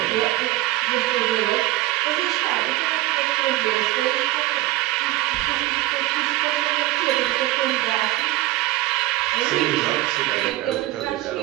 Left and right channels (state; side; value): quieter; left; 17.2 dB